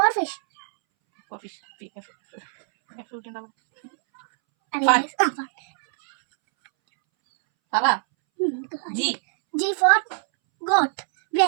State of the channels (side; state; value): left; silent; 63 dB below the other